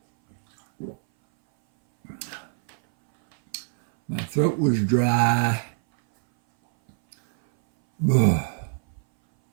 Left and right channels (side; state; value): left; silent; 60 dB below the other